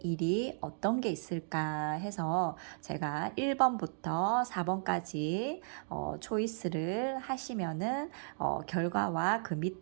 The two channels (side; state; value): left; silent; digital silence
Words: 일이 어떤 게 있을까 해서 제가 1번부터 4번까지 초이스를 하시면은 결과와 그